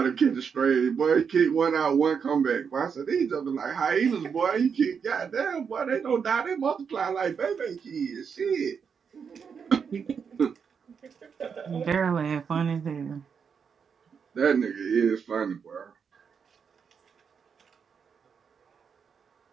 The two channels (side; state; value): left; quieter; 6.5 dB